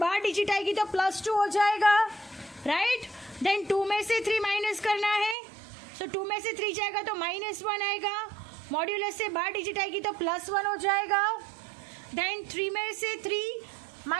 डिजिट आएगी तो +2 हो जाएगा, राइट. देन 2 में से 3 माइनस करना है. सो 2 में से 3 जाएगा तो -1 आएगा. मॉड्यूलस से बाहर डिजिट आएगी तो +1 हो जाएगा. देन 3 में से 3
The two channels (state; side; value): drops out; left; at 5.4 s